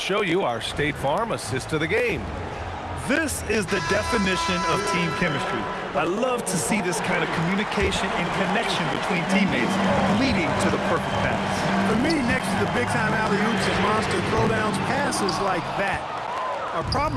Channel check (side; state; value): both; identical; correlation 1.00